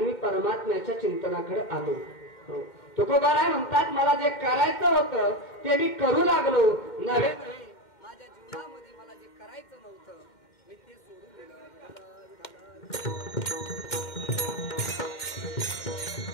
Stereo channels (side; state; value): right; late; 2.1 ms